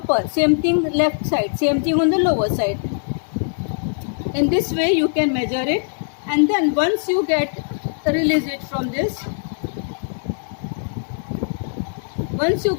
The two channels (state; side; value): silent; right; digital silence